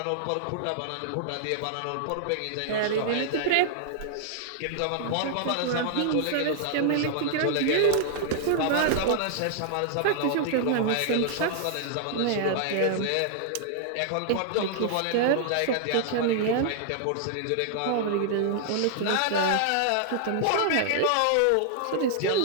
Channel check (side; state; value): both; different; correlation -0.01